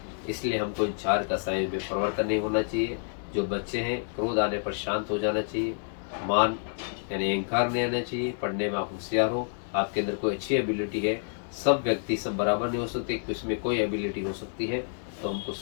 इसलिए हमको इन 4 कषायों में परिवर्तन नहीं होना चाहिए। जो बच्चे हैं, क्रोध आने पर शांत हो जाना चाहिए। मान यानी अहंकार नहीं आना चाहिए। पढ़ने में आप होशियार हो, आपके अंदर कोई अच्छी एबिलिटी है। सब व्यक्ति सब बराबर नहीं हो सकते, इसमें कोई एबिलिटी हो सकती है, तो हमको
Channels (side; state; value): right; silent; digital silence